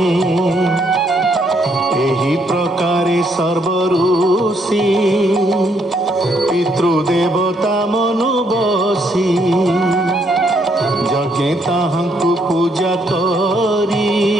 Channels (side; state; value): both; normal; correlation 0.72